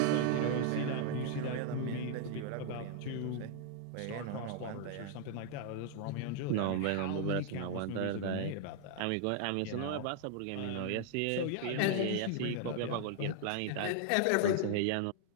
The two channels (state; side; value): different; both; correlation 0.00